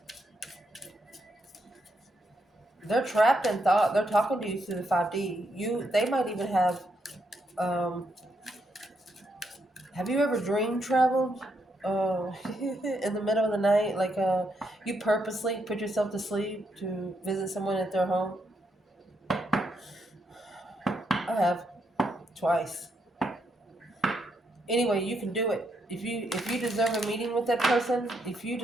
They're trapped in thought. They're talking to you through the 5D. They might even have you ever dream traveled? In the middle of the night, like you purposely put yourself to sleep to visit someone at their home? I have twice. Anyway, you can do it. If you deserve a meeting with that person, if you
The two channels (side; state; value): both; normal; correlation 0.79